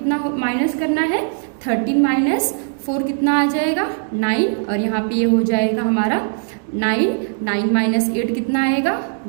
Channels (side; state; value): left; silent; digital silence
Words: माइनस करना है, 13 माइनस 4 कितना आ जाएगा, 9. और यहाँ पे ये हो जाएगा हमारा 9. 9 माइनस 8 कितना आएगा,